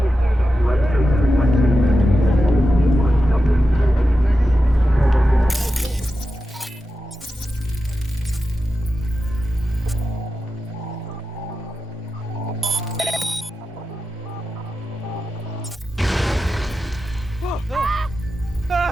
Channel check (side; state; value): both; normal; correlation 0.91